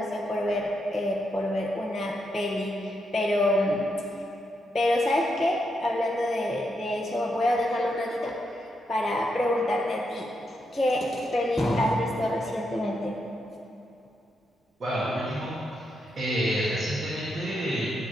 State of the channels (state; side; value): normal; both; correlation 0.82